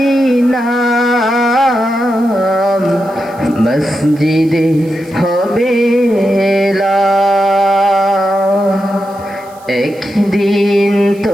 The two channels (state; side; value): noise; right; hiss, 27 dB below the sound